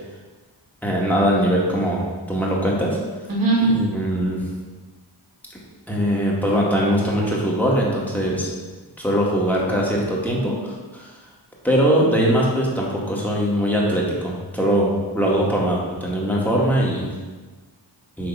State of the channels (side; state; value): both; normal; correlation 0.40